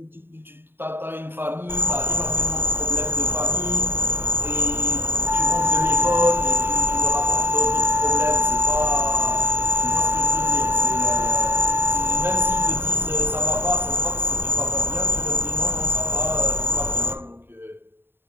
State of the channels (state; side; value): late; left; 0.10 ms